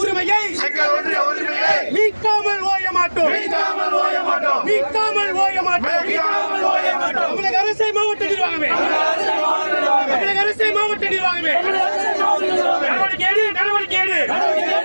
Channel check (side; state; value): both; inverted; correlation -1.00